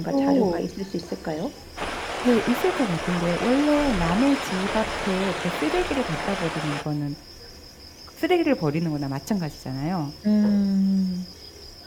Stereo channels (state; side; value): identical; both; correlation 1.00